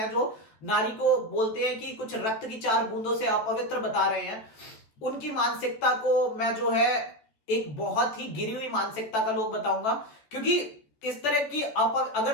जो नारी को बोलते हैं कि कुछ रक्त की 4 बूंदों से अपवित्र बता रहे हैं, उनकी मानसिकता को मैं जो है एक बहुत ही गिरी हुई मानसिकता का लोग बताऊंगा। क्योंकि इस तरह की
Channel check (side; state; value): right; late; 14 ms